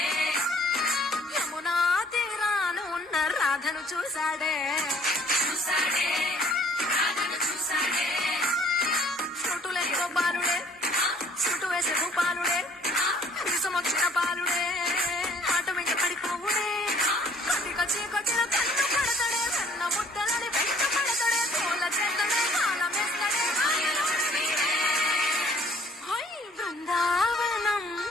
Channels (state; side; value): normal; both; correlation 0.59